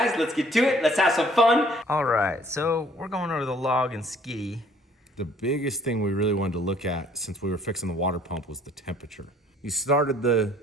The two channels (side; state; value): both; normal; correlation 0.57